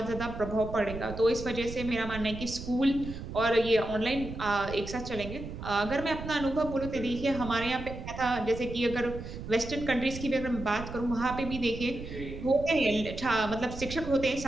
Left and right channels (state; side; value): noise; right; rumble, 9 dB below the sound